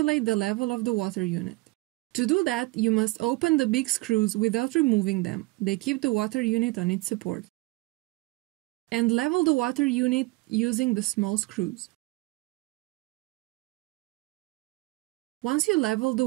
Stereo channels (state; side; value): quieter; left; 22.6 dB